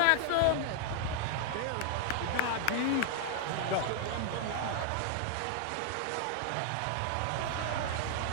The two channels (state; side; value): different; both; correlation 0.00